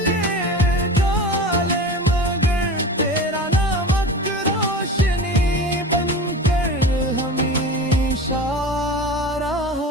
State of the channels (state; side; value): normal; both; correlation 0.32